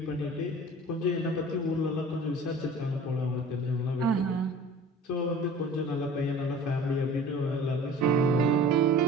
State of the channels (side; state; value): both; normal; correlation 0.43